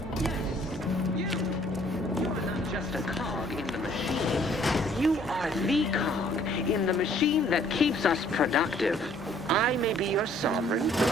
Yes, you. You are not just a cog in the machine. You are the cog in the machine that keeps us productive. I may be your sovereign.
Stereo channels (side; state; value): both; normal; correlation 0.60